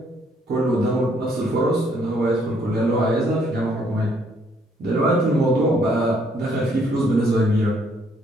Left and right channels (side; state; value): both; normal; correlation 0.67